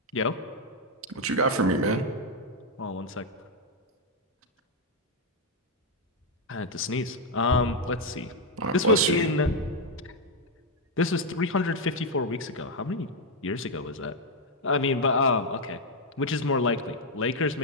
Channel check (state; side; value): normal; both; correlation 0.01